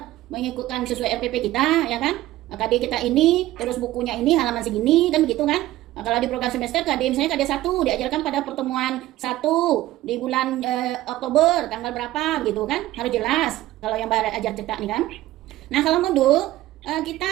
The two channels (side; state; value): left; quieter; 15.8 dB